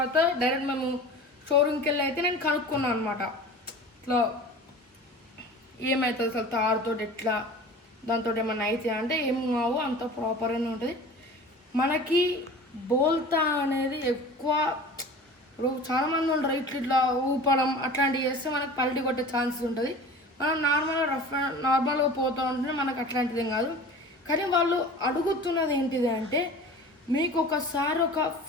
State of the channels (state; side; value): normal; both; correlation 0.39